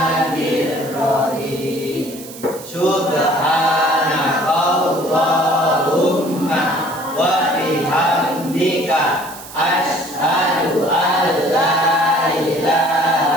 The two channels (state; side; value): noise; right; hiss, 16 dB below the sound